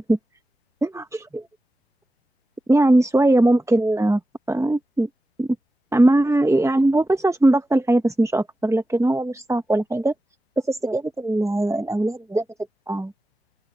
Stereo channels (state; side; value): normal; both; correlation 0.94